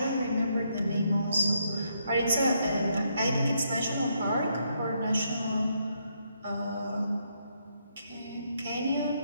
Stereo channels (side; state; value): both; inverted; correlation -0.76